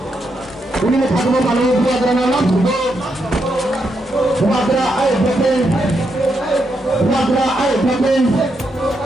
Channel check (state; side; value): normal; both; correlation 0.81